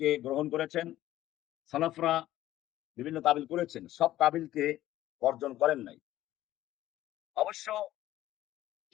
গ্রহণ করেছেন। সালাফরা বিভিন্ন তাবিল করেছেন, সব তাবিলকে বর্জন করেন নাই। অবশ্য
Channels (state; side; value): quieter; right; 14.3 dB